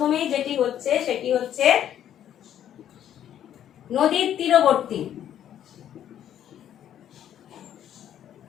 যেটি হচ্ছে সেটি হচ্ছে নদীর তীরবর্তী,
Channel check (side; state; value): right; quieter; 10.5 dB